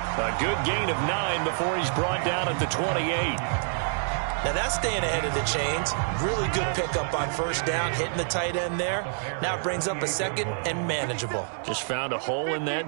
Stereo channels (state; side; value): silent; left; digital silence